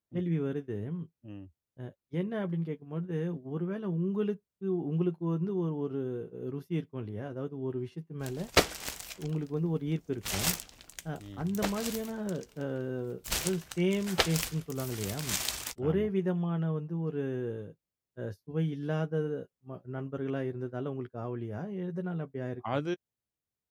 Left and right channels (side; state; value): both; identical; correlation 1.00